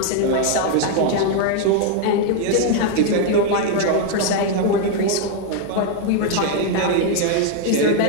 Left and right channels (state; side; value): different; both; correlation 0.01